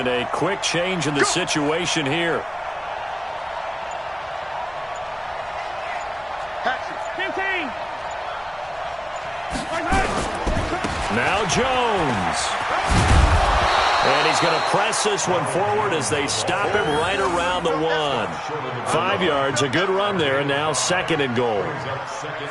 A quick change in the situation here. 15. Jones. And he's going to press this one forward as they stop him right around the 1. 5 yards, a good run there, and now 2nd and goal.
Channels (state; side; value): identical; both; correlation 1.00